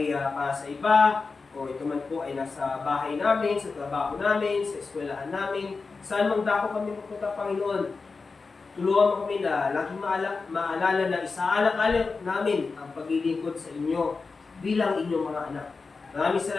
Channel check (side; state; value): right; quieter; 4.3 dB